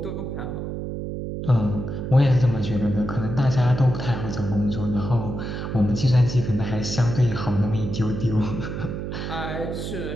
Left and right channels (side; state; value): right; noise; hum, 5 dB below the sound